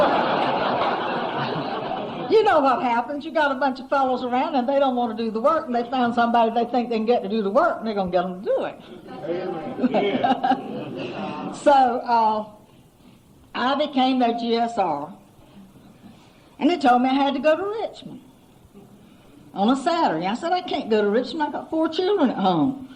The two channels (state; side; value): identical; both; correlation 1.00